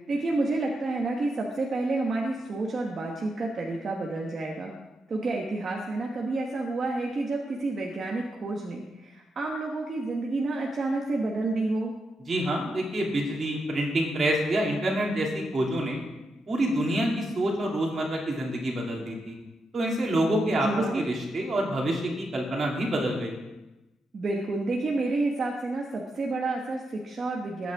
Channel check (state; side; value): normal; both; correlation 0.85